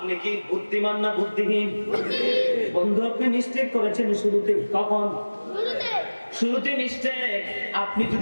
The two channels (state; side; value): inverted; both; correlation -1.00